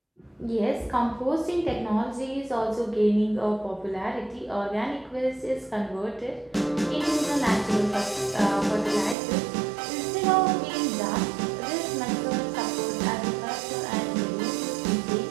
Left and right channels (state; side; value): drops out; left; at 9.2 s